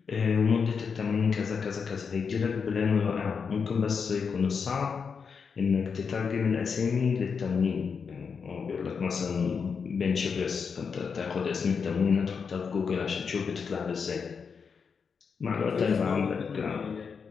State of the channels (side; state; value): right; quieter; 5.9 dB